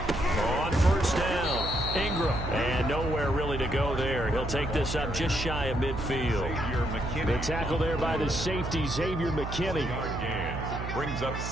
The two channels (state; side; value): noise; right; hum, 5 dB below the sound